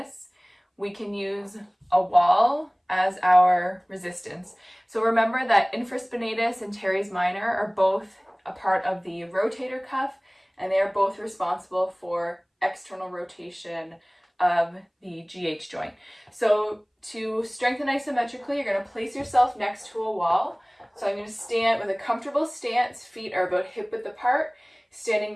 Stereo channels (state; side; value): identical; both; correlation 1.00